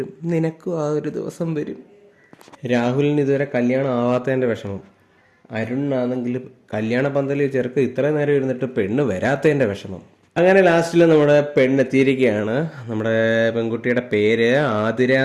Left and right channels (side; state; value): both; identical; correlation 1.00